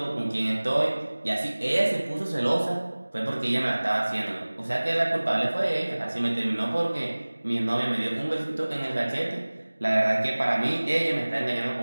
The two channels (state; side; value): inverted; both; correlation -1.00